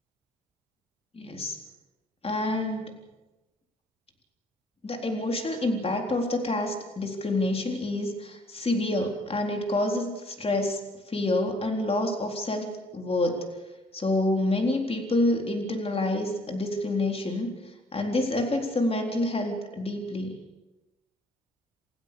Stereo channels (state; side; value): normal; both; correlation 0.61